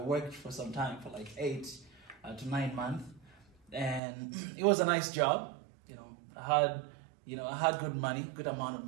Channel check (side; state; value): left; drops out; at 4.0 s